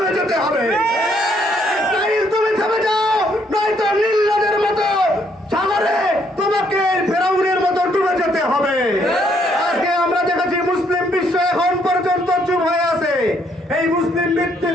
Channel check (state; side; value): normal; both; correlation 0.70